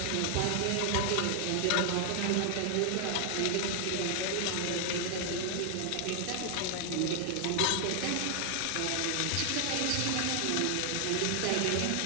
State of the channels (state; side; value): different; both; correlation 0.00